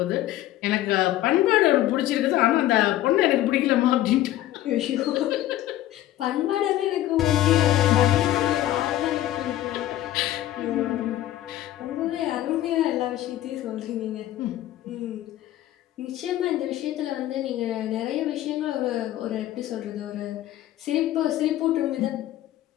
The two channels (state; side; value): quieter; right; 13.9 dB